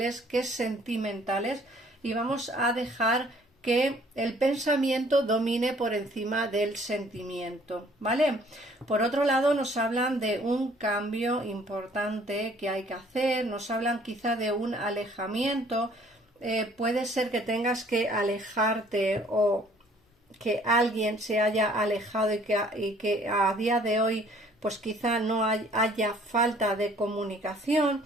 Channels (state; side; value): normal; both; correlation 0.58